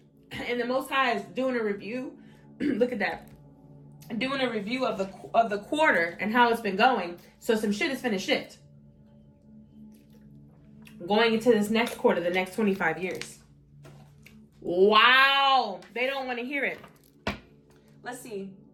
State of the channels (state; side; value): identical; both; correlation 1.00